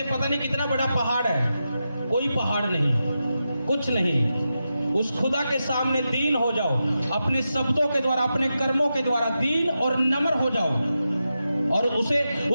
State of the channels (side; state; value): both; inverted; correlation -0.89